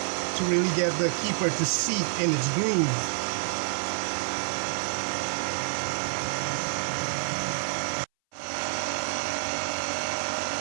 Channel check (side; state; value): left; silent; 59 dB below the other